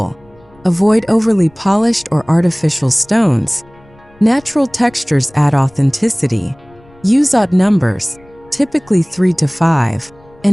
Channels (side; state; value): left; noise; rumble, 28 dB below the sound